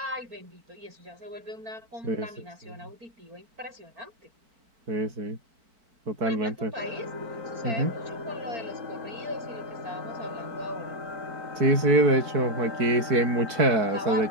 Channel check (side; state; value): left; late; 4.7 ms